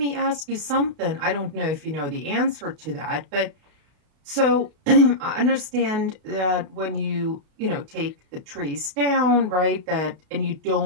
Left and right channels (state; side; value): late; left; 32 ms